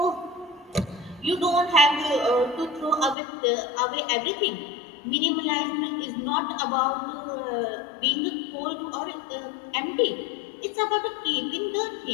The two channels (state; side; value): drops out; right; at 3.2 s